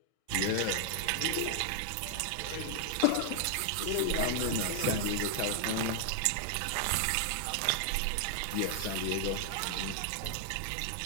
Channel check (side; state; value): both; different; correlation 0.00